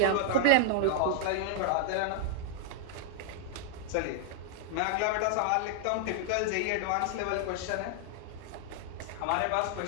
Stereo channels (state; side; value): different; both; correlation -0.01